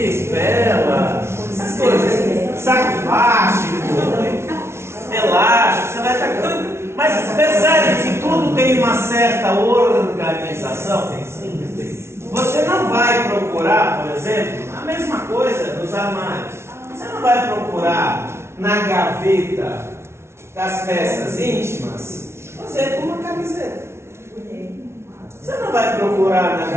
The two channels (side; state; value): left; late; 0.13 ms